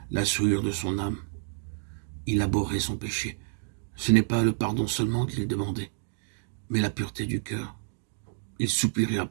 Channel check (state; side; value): silent; left; digital silence